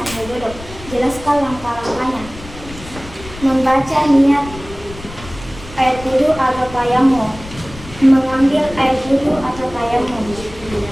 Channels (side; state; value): left; noise; rumble, 15 dB below the sound